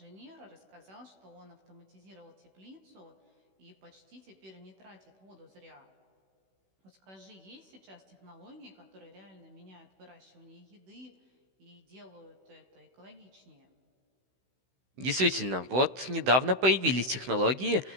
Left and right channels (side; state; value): left; late; 16 ms